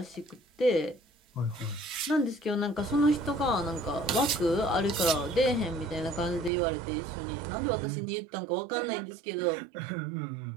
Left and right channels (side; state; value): left; drops out; at 6.5 s